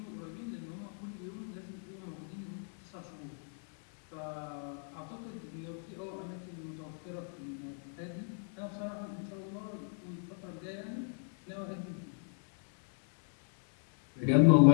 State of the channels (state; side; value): silent; right; 53 dB below the other